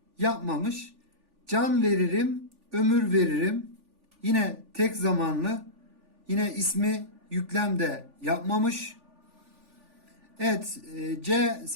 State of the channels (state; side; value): late; left; 3.4 ms